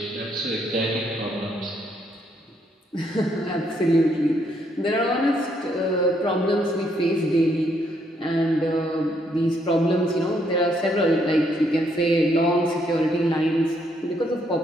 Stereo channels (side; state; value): both; normal; correlation 0.72